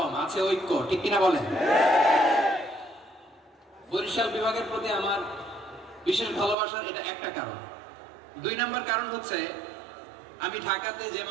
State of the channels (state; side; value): drops out; left; at 6.6 s